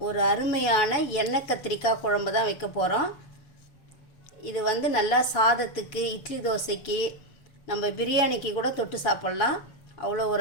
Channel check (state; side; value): late; right; 7.0 ms